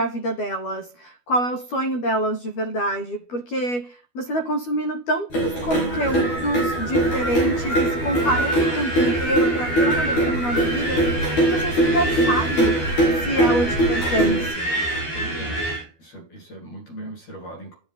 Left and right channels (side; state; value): right; late; 12 ms